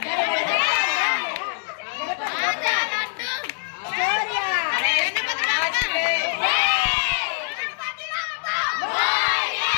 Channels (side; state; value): right; silent; digital silence